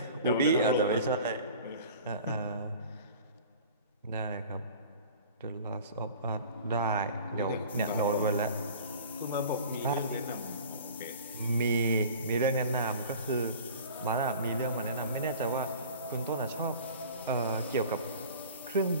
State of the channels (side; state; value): both; inverted; correlation -0.43